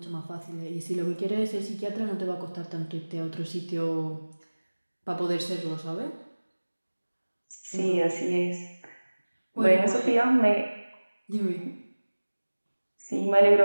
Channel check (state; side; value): inverted; both; correlation -1.00